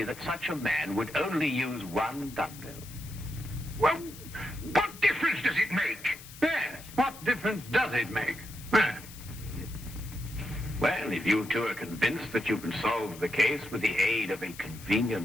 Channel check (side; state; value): left; noise; hiss, 17 dB below the sound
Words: that such a man would only use one dumbbell? Well, what difference does it make? Yes, what difference does it make? Well, if you two are convinced that you can solve the case with the aid of a